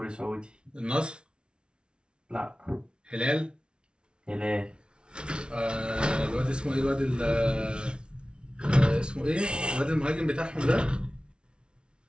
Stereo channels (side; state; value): left; late; 0.056 ms